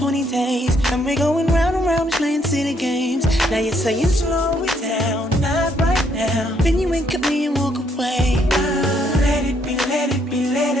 many days, and we're going round and round, just playing silly games. Now you're saying slow it down, not right now. Then you wink at me and walk away. Let it be, let it be, let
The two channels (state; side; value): normal; both; correlation 0.71